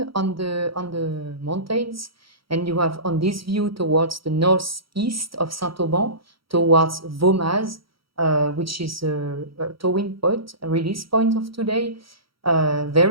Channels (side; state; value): left; late; 0.75 ms